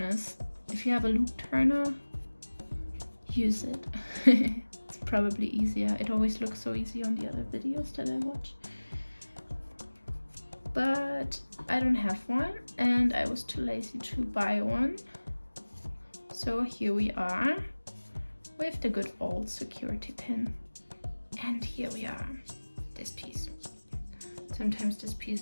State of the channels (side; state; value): both; inverted; correlation -1.00